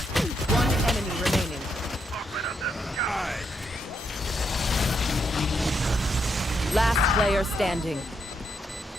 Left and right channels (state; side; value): normal; both; correlation 0.79